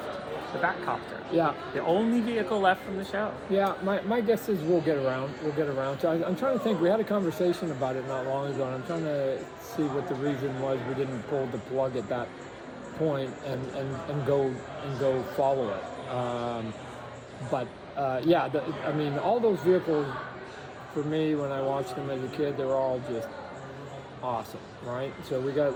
the Batcopter. Yeah. The only vehicle left from the show. Yeah, my guess is we'll get around to it. I'm trying to think, we had a conversation about it not long ago, and I'm trying to see what the reason was we didn't pull the plug at that point and go follow it. All those vehicles, for me, when I watched them as a kid, they were all just awesome, right? So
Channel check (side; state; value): both; identical; correlation 1.00